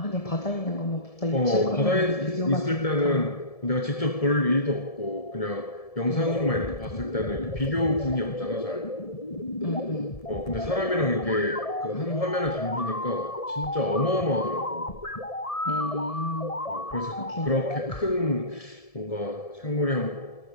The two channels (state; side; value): late; right; 1.7 ms